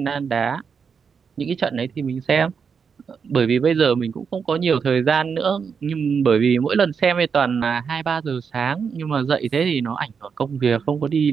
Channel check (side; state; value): left; quieter; 6.2 dB